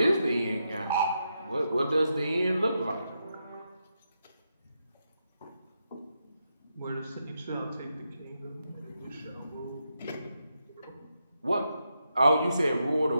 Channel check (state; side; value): inverted; both; correlation -0.84